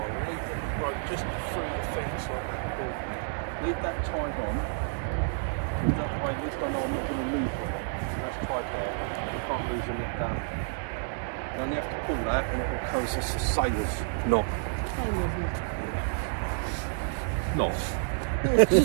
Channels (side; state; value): left; silent; digital silence